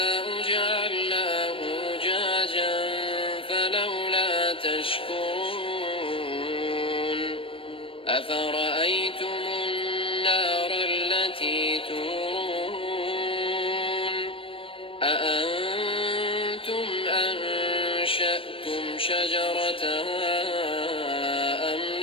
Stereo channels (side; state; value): right; late; 0.26 ms